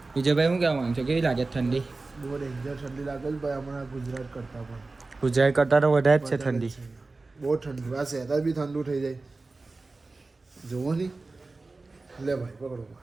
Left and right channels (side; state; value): left; quieter; 3.5 dB